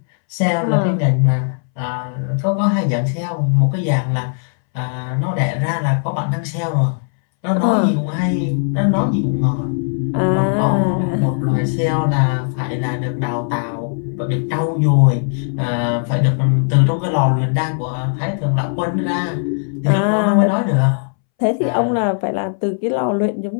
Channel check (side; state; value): right; silent; 66 dB below the other